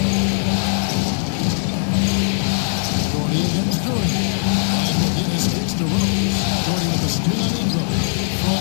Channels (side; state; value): right; silent; digital silence